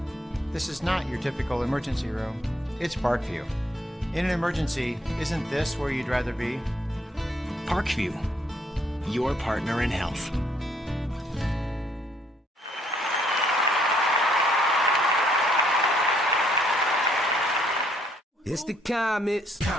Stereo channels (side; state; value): both; normal; correlation 0.68